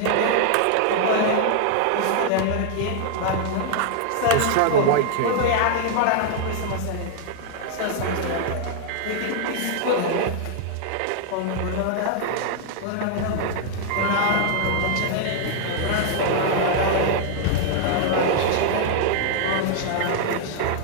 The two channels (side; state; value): both; different; correlation -0.01